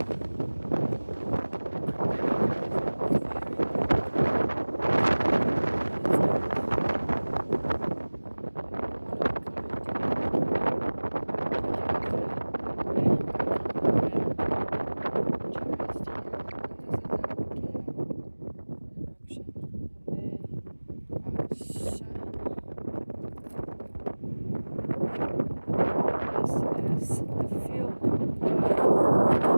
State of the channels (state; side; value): inverted; both; correlation -1.00